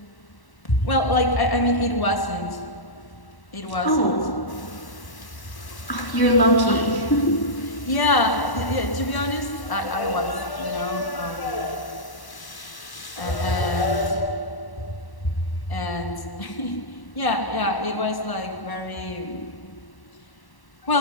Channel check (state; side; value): late; right; 1.1 ms